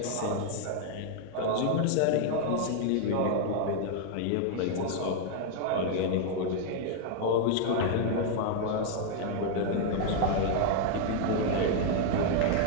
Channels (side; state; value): both; different; correlation 0.00